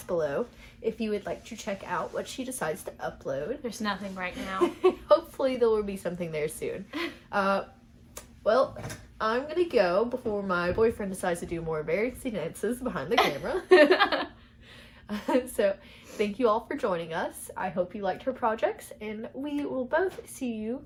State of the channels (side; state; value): both; identical; correlation 1.00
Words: below if you would like to check out what she decides to upload. There's nothing right now. Hopefully there will be something there soon. Well, I'm gonna go before my boyfriend decides to do more embarrassing dances behind the camera. So thank you all for joining us. I hope you liked her projects, and we will both see you